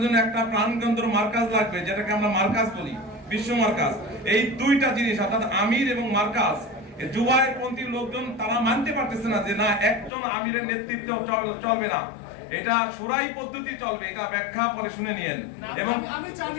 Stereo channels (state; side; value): drops out; right; at 10.1 s